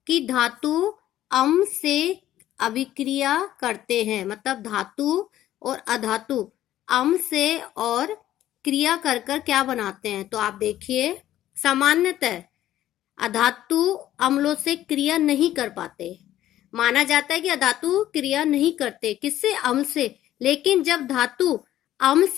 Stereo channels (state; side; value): quieter; right; 13.1 dB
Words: कि धातु अम्ल से अभिक्रिया करते हैं, मतलब धातु और अधातु अम्ल से और क्रिया कर कर क्या बनाते हैं। तो आप देखिए, सामान्यतः अधातु अम्लों से क्रिया नहीं कर पाते। माना जाता है कि अधातु क्रिया नहीं करते, किससे? अम्ल से। लेकिन जब धातु अम्ल